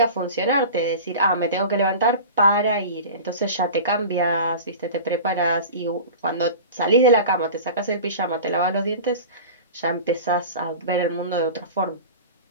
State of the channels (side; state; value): both; inverted; correlation -0.34